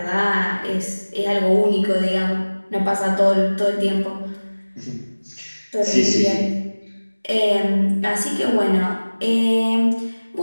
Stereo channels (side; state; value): both; inverted; correlation -1.00